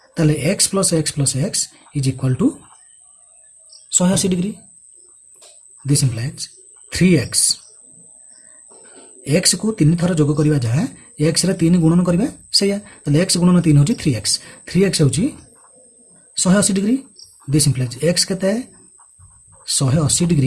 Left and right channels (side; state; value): both; identical; correlation 1.00